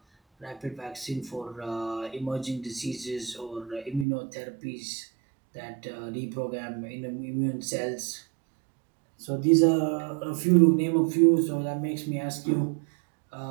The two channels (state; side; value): drops out; left; at 4.0 s